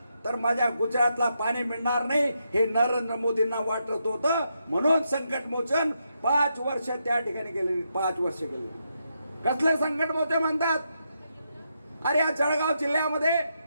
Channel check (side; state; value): both; inverted; correlation -0.82